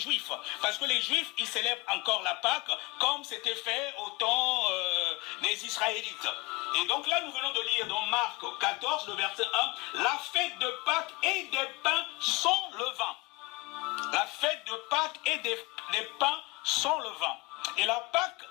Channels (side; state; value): right; quieter; 24.1 dB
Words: Parce que les Juifs, ils célèbrent encore la Pâque comme c'était fait au temps des Israélites. Et donc là, nous venons de lire dans Marc 14, le verset 1, la fête de Pâques et des pains sans levain. La fête de Pâques et des pains sans levain. Et la Pâque